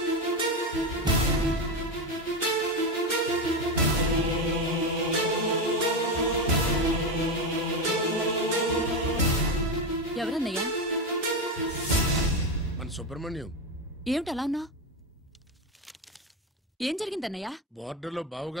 సుబ్రహ్మణ్యం. ఏమిటి అలా ఉన్నా? ఏం జరిగిందన్నయ్య? బోర్డర్లో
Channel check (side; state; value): both; normal; correlation 0.13